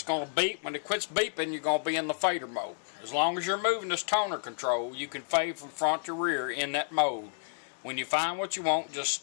going to beep. When it quits beeping, you're going to be in the fader mode. As long as you're moving this toner control, you can fade from front to rear in that mode. When you find what you want, just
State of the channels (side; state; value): right; silent; 57 dB below the other